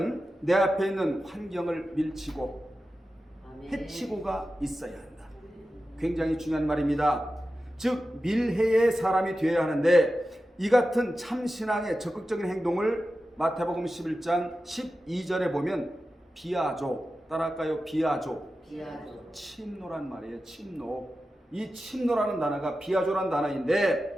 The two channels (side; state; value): both; normal; correlation 0.93